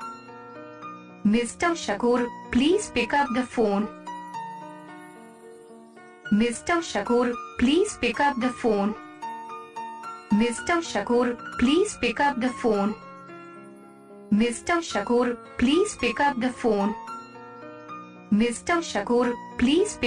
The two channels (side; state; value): both; identical; correlation 1.00